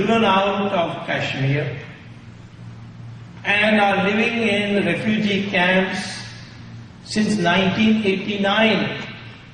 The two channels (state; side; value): identical; both; correlation 1.00